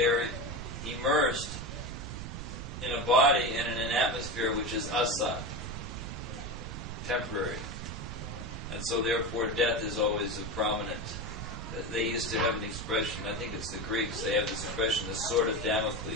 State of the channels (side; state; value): right; noise; rumble, 7 dB below the sound